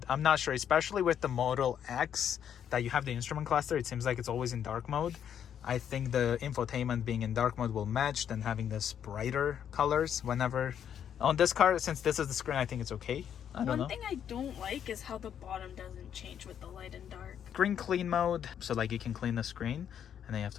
I'm not sure, especially with the Model X that you have the instrument cluster. It seems like it's always in dark mode. I think the infotainment being in dark mode will match than having this brighter colors whenever. On this car, since this is the screen, I think it's okay. I don't know. One thing I don't like is how the bottom doesn't change with the light and dark. Screen clean mode. So like you can clean the screen. And then you have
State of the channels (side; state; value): right; quieter; 9.0 dB